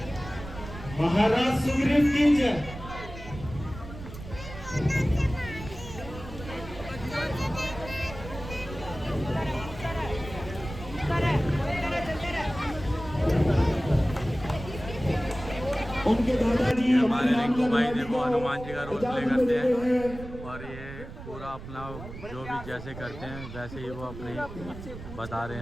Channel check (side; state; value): right; noise; rumble, 12 dB below the sound